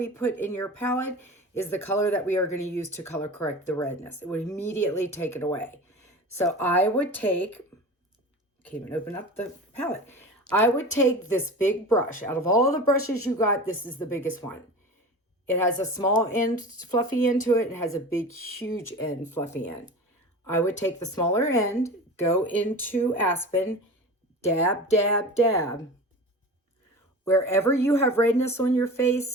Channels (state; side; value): normal; both; correlation 0.33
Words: put in your palette, is the color that we are going to use to color correct the redness. It would immediately take it away. So I would take, can't even open up the palette. I would take this big brush. Out of all the brushes you got, this is the biggest one. It has a small end, fluffy end to it. It has a big, huge end, fluffy end. I would take the smaller end, go into Aspen, dab, dab, dab. Wherever you have redness on your